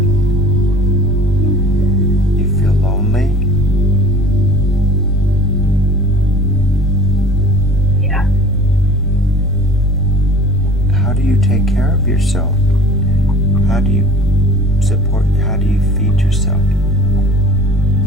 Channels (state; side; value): normal; both; correlation 0.45